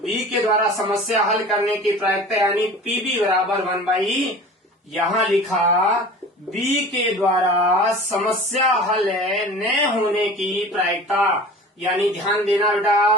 के द्वारा समस्या हल करने की प्रायिकता यानी पीबी बराबर 1/, यहां लिखा बी के द्वारा समस्या हल न होने की प्रायिकता, यानी ध्यान देना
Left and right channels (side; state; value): both; normal; correlation 0.40